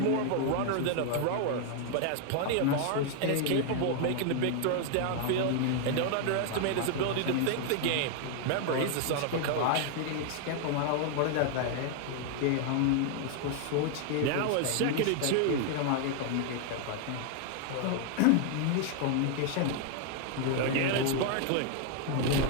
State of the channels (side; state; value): both; different; correlation 0.00